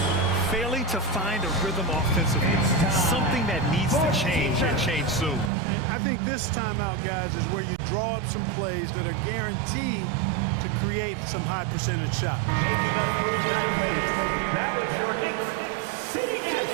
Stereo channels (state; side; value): drops out; left; at 5.5 s